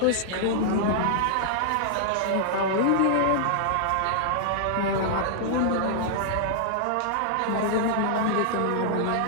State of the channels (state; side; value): different; both; correlation -0.01